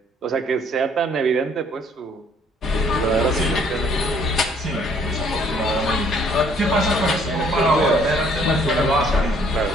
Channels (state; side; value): normal; both; correlation 0.62